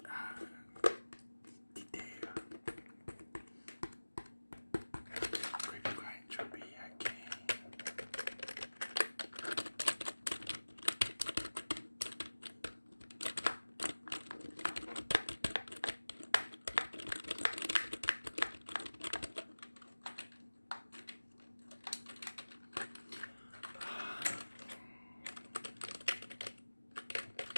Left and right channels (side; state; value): both; inverted; correlation -1.00